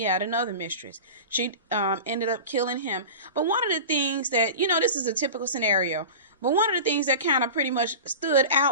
had another mistress. She ended up killing him. But one of the things that, this is a typical scenario, but one of the things that kind of pretty much stood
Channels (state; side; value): inverted; both; correlation -0.32